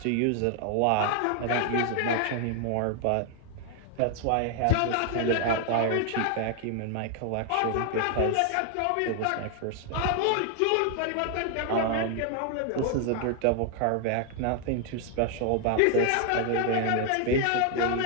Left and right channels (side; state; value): both; different; correlation 0.00